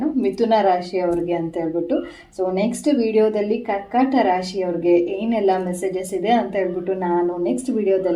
ಮಿಥುನ ರಾಶಿಯವ್ರಿಗೆ ಅಂತ ಹೇಳ್ಬಿಟ್ಟು. ಸೊ ನೆಕ್ಸ್ಟ್ ವಿಡಿಯೋದಲ್ಲಿ ಕರ್ಕಾಟ ರಾಶಿಯವ್ರಿಗೆ ಏನೆಲ್ಲ ಮೆಸೇಜಸ್ ಇದೆ ಅಂತ ಹೇಳ್ಬಿಟ್ಟು ನಾನು ನೆಕ್ಸ್ಟ್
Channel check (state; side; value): identical; both; correlation 1.00